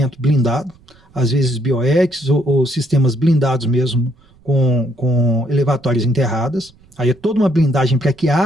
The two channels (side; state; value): right; noise; rumble, 29 dB below the sound